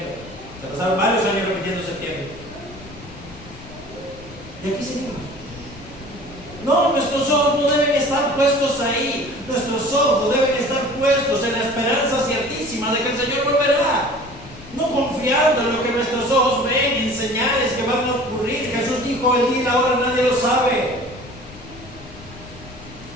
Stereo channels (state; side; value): noise; left; rumble, 19 dB below the sound